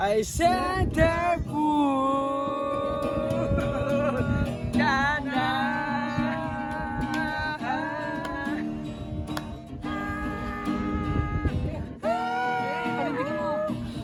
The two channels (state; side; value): identical; both; correlation 1.00